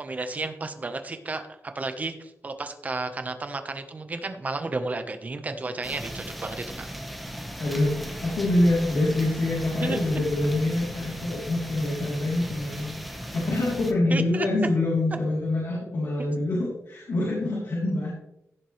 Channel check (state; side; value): normal; both; correlation 0.87